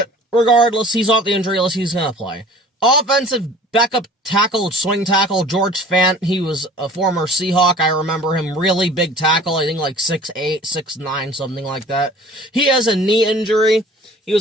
regardless, he's off the injury list. He's going to play. Offensive backup tackle, swing tackle, George Fant. He was a former Seahawk. I remember him. Really big tackle. I think like 6'8", 6'9", something like that. He has a knee injury. He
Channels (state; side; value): normal; both; correlation 0.47